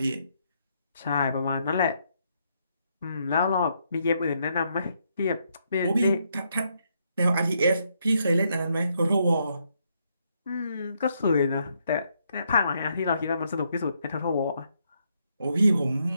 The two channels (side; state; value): both; inverted; correlation -0.76